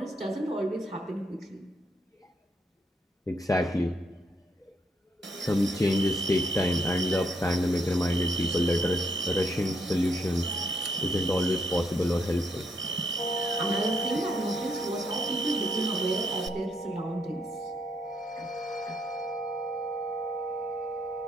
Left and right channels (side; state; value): both; normal; correlation 0.74